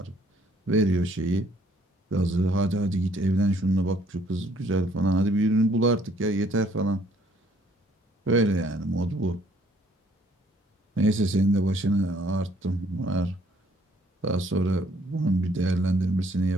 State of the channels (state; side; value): normal; both; correlation 0.63